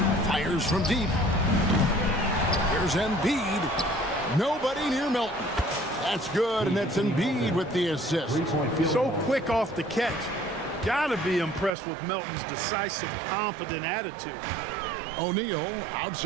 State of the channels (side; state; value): left; drops out; at 11.7 s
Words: Fires from deep. Here's Embiid. Nobody near Melton. That's good, and that's Embiid with the assist. So quick off the catch. Gotta be impressed with Melton's decisive, confident attitude. O'Neal